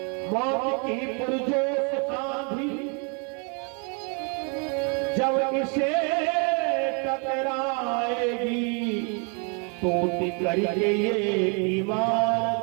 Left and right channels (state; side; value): quieter; left; 36.9 dB